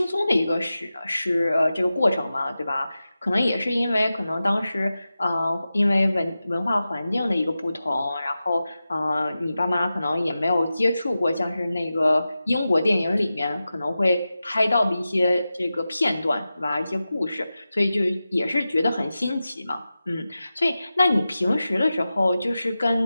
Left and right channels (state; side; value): inverted; both; correlation -0.94